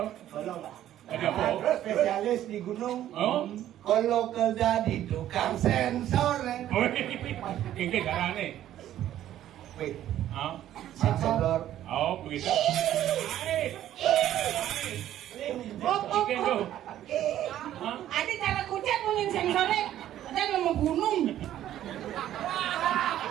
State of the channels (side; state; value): left; quieter; 12.2 dB